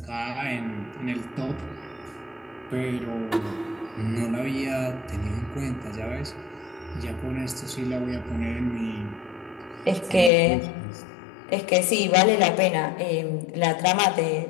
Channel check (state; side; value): drops out; right; at 10.3 s